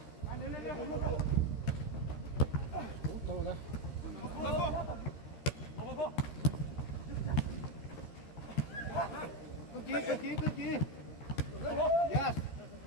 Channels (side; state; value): right; late; 13 ms